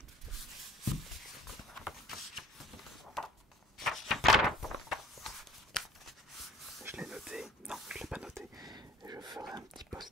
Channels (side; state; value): both; normal; correlation 0.51